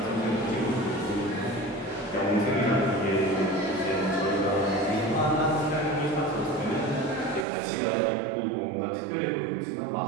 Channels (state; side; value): drops out; left; at 7.5 s